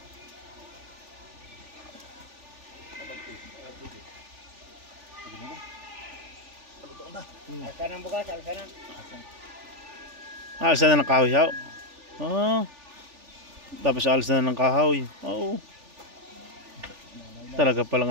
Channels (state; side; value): late; left; 3.4 ms